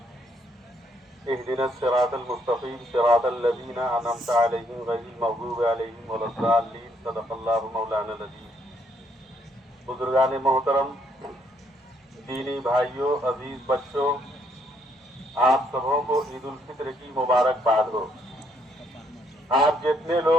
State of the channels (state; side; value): normal; both; correlation 0.71